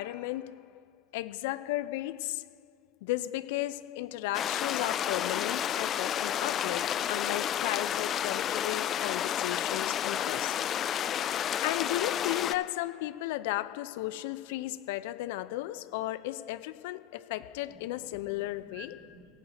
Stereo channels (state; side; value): quieter; right; 11.5 dB